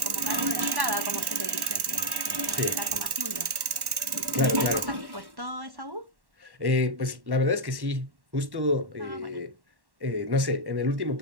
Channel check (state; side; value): late; left; 1.1 ms